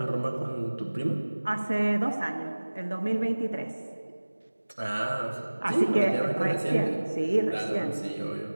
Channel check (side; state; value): both; inverted; correlation -1.00